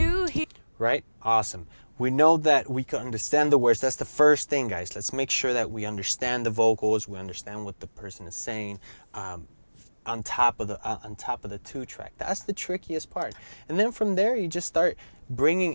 he. Right? Awesome. We know that we can understand the words. That's the first thing, guys. Let's make sure that we understand the vocals. We understand what the person is saying. On top of the 2-track. That's the trickiest part. And then from there, you just start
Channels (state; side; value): inverted; both; correlation -1.00